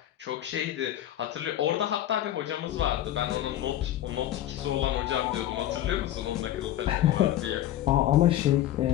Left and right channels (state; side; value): quieter; right; 12.6 dB